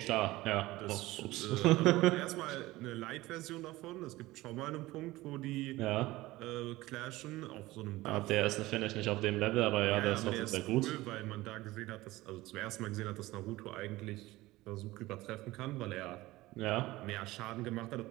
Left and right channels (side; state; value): left; quieter; 18.6 dB